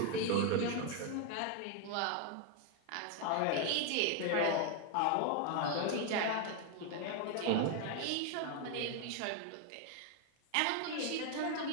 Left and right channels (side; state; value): both; different; correlation 0.00